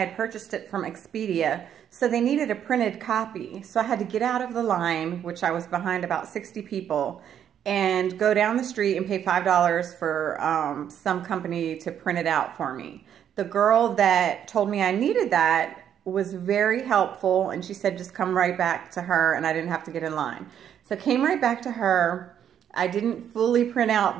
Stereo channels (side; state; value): left; quieter; 9.4 dB